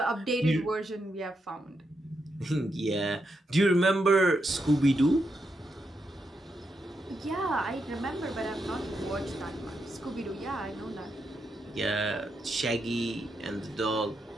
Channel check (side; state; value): both; normal; correlation 0.83